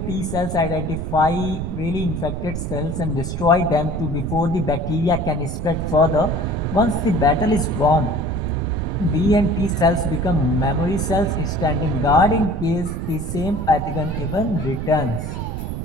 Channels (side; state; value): right; noise; rumble, 5 dB below the sound